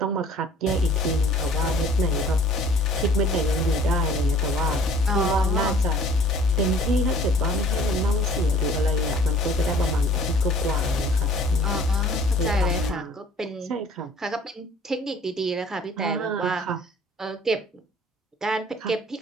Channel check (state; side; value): normal; both; correlation 0.52